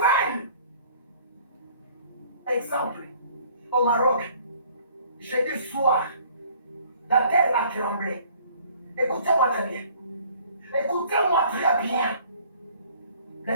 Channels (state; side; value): inverted; both; correlation -0.55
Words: Exemple, au Maroc, jeudi soir, la terre a tremblé. Écoutez-moi très bien. Écoutez-moi très bien.